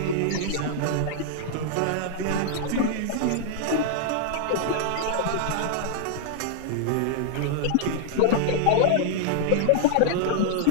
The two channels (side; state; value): both; different; correlation -0.01